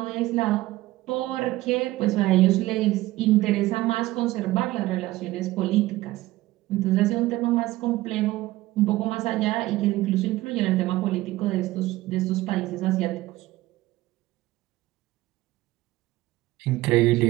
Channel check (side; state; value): left; quieter; 17.6 dB